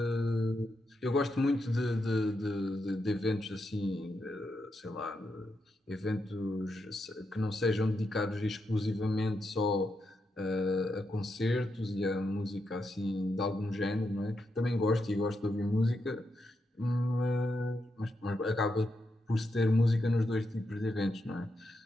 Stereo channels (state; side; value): normal; both; correlation 0.84